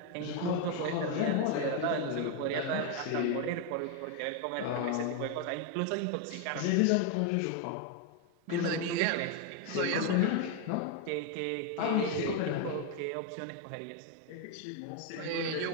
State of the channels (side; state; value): both; different; correlation 0.01